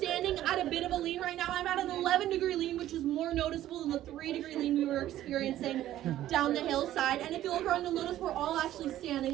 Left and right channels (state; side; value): quieter; left; 13.3 dB